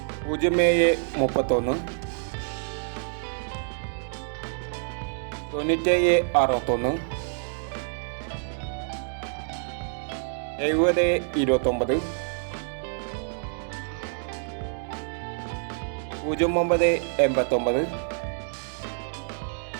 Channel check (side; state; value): left; silent; 60 dB below the other